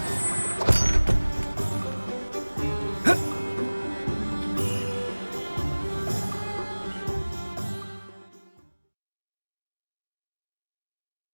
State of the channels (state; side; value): inverted; both; correlation -1.00